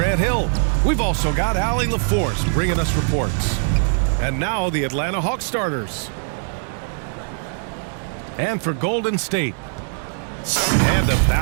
Hill. We've also got Allie LaForce bringing us reports. And now the Atlanta Hawks starters. And for Golden State. And a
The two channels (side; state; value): left; silent; digital silence